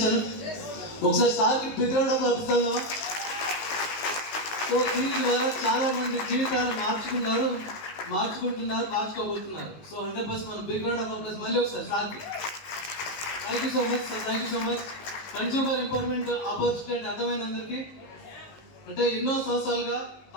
ఒకసారి సార్కి big round of applause. So దీని ద్వారా చాలా మంది జీవితాలను మార్చుకోబోతున్నారు. సో 100% మనం బిగ్ రౌండ్ ఆఫ్ అప్లాస్ మళ్ళీ ఒకసారి సార్కి. Thank you so much sir, thank you so much. Consumer empowerment opportunity అంటే అర్థమైన అందరికీ, అంటే ఎన్నో సంవత్సరాలుగా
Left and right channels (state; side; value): late; right; 19 ms